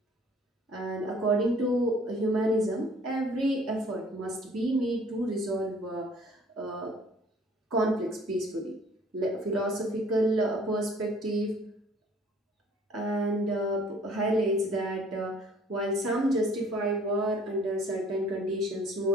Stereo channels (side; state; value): both; normal; correlation 0.55